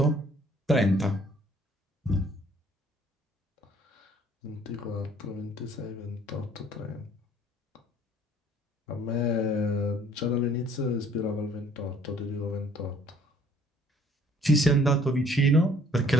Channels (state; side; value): normal; both; correlation 0.58